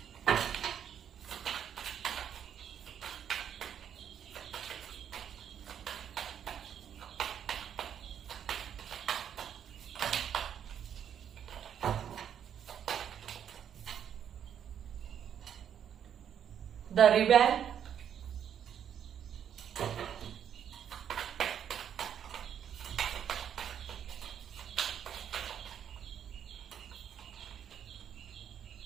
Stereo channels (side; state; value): left; quieter; 9.0 dB